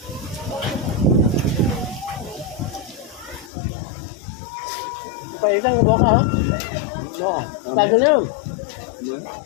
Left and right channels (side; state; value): right; drops out; at 3.5 s